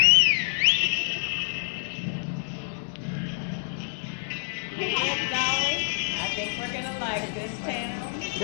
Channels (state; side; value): silent; right; 60 dB below the other